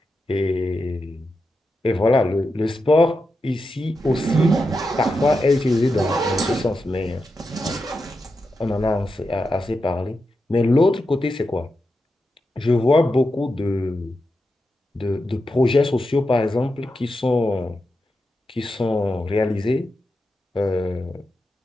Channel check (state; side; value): normal; both; correlation 0.88